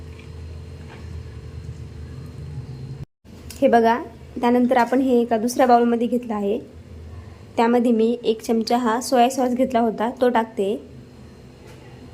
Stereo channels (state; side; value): identical; both; correlation 1.00